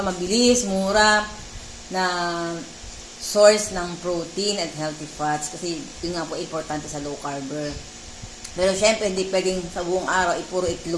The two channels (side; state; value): both; identical; correlation 1.00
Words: Mabilis, mura, na source ng protein at healthy fats. Kasi, yun nga po importante sa low carber. Pero syempre, hindi pwedeng sa buong araw, puro